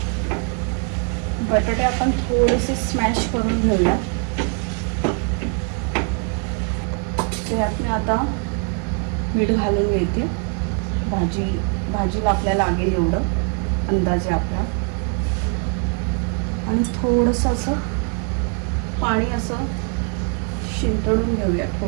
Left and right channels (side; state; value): left; quieter; 38.9 dB